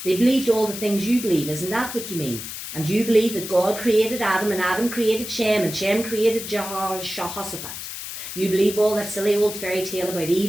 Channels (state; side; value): noise; left; hiss, 8 dB below the sound